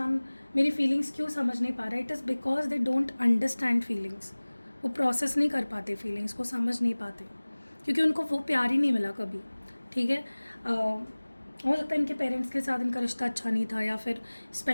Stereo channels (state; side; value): inverted; both; correlation -1.00